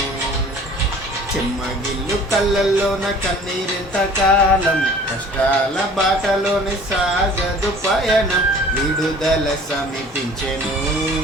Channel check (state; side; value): normal; both; correlation 0.48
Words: చెమ్మగిల్లు కళ్ళల్లోన కన్నీరెంత కాలం, కష్టాల బాటలోని సాగదు పయనం. విడుదల సమీపించెను,